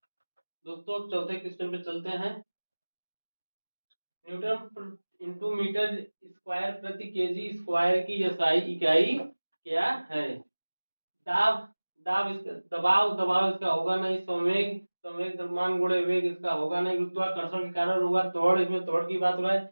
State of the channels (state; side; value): inverted; both; correlation -1.00